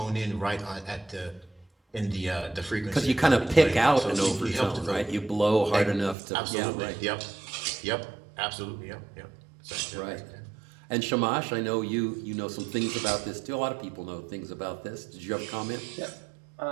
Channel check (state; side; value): drops out; left; at 6.2 s